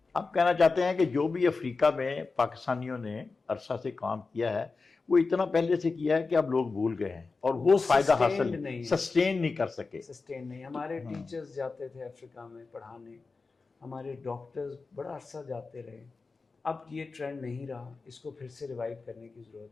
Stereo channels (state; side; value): quieter; right; 4.1 dB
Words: آپ کہنا چاہتے ہیں کہ جو بھی افریقہ میں پاکستانیوں نے عرصہ سے کام کیا ہے وہ اتنا پہلے سے کیا ہے کہ اب لوگ بھول گئے ہیں اور وہ فائدہ حاصل سسٹین نہیں کر سکے. سسٹین نہیں. ہمارے ٹیچرز جاتے تھے افریقہ میں پڑھانے, ہمارے ڈاکٹرز بڑا عرصہ جاتے رہے. اب یہ ٹرینڈ نہیں رہا, اس کو پھر سے ریوائیو کرنے کی